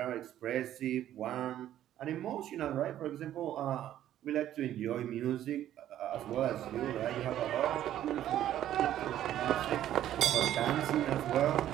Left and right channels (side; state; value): left; quieter; 12.0 dB